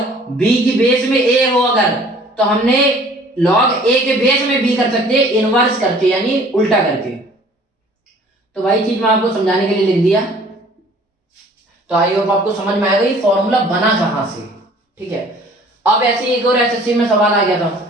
b की बेस में a हो अगर, तो हमने log a के बेस में b कर सकते हैं इनवर्स करके यानी उल्टा करके। तो वही चीज मैं आपको समझाने के लिए लिख दिया। तो आई होप आपको समझ में आएगा ये फॉर्मूला बना कहां से, ठीक है। अब ऐसे एक और एसएससी में सवाल आ गया था,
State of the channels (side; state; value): both; normal; correlation 0.53